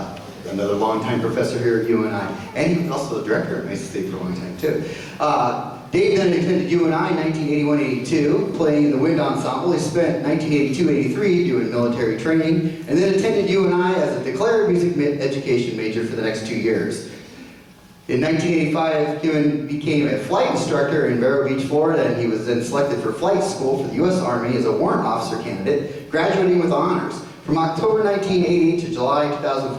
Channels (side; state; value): both; identical; correlation 1.00